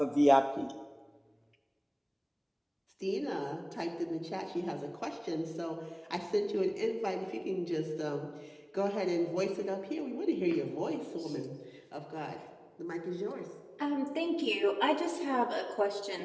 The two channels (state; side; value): identical; both; correlation 1.00